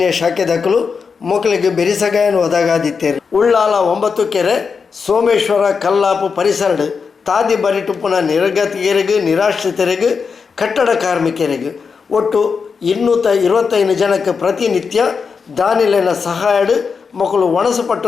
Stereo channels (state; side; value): quieter; right; 5.5 dB